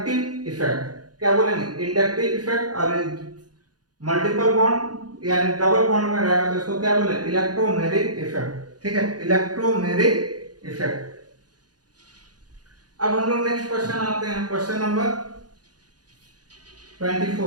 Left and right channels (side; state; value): left; late; 0.69 ms